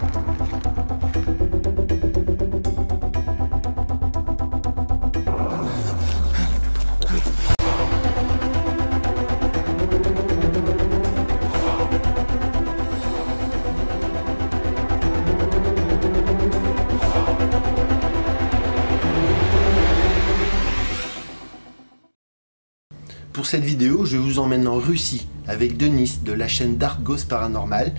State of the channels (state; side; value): inverted; both; correlation -1.00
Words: Pour cette vidéo, je vous emmène en Russie avec Denis de la chaîne Dark Ghost Paranormal